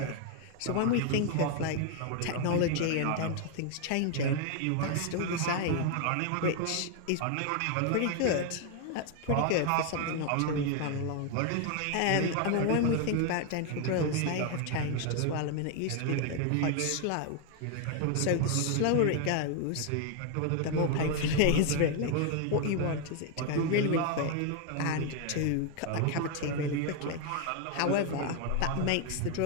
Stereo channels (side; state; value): both; different; correlation 0.01